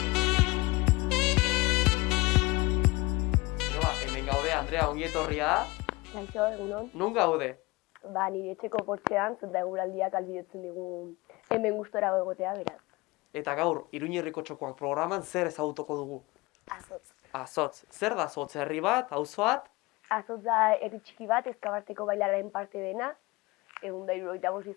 Hemen gaude, Andrea, ongi etorria. Kaixo, egunon. Non gaude? Nire etxeko portzean, zenta eguraldiak albidetzen digu hemen gustora egotea, beraz. Eta gaur, Iruñerriko txokoak programan zer ezagutuko dugu? Azotz. Azotz. Zer da Azotz? Herri bat, auzo bat? Azotz da herri txiki bat, Ezkabarteko bailararen parte dena, 175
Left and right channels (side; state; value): right; quieter; 22.7 dB